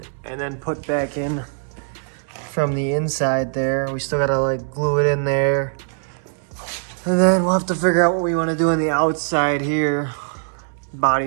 and then put back in from the inside there. We still gotta like glue it in there. And then we'll have to figure out what we wanna do on the outside here.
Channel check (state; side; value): silent; left; 65 dB below the other